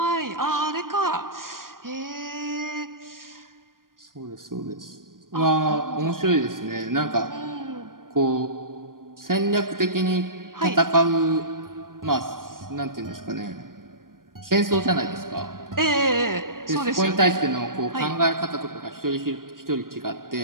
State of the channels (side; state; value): left; late; 0.91 ms